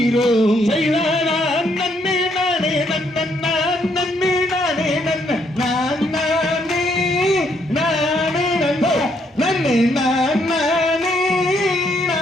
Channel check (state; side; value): normal; both; correlation 0.72